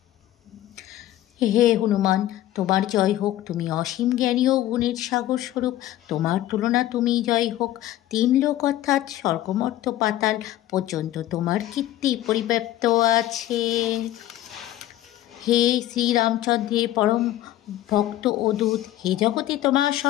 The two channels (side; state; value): right; quieter; 14.1 dB